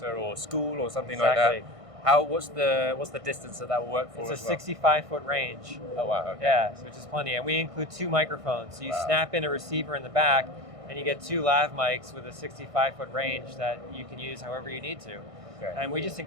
or school or something like that, what's the distance that will work for? It's a 65-foot range. Oh wow! Okay. Yeah, which is plenty, and we include 2 microphones. So you snap in a receiver in the back, and you get 2 lav mics with a 65-foot range that you can use however you need to. Okay. And we just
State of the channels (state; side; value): late; left; 1.6 ms